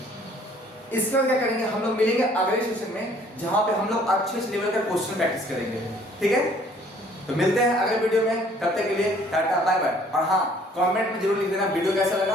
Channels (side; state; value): both; normal; correlation 0.58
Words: इसके बाद क्या करेंगे, हम लोग मिलेंगे अगले सेशन में जहां पे हम लोग अच्छे लेवल का क्वेश्चन प्रैक्टिस करेंगे, ठीक है। तो मिलते हैं अगले वीडियो में, तब तक के लिए टाटा बाय बाय। और हाँ, कमेंट में जरूर लिख देना वीडियो कैसा लगा